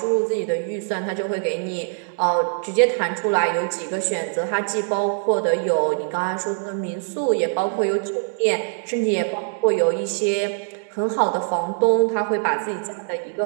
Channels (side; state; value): left; silent; 64 dB below the other